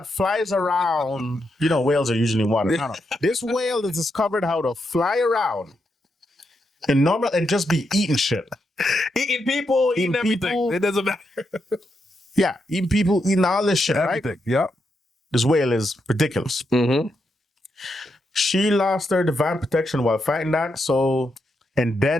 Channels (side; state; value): both; normal; correlation 0.83